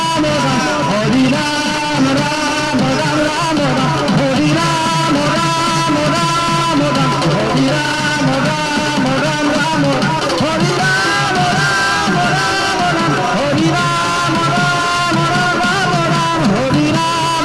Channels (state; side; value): identical; both; correlation 1.00